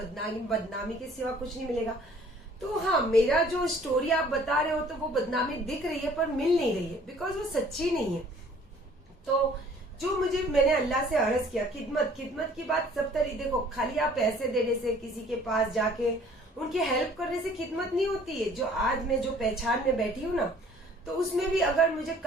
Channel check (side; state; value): both; normal; correlation 0.55